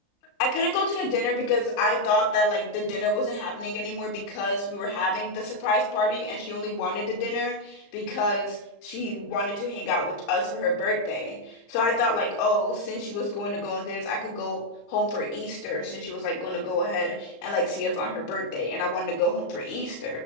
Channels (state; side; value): late; right; 35 ms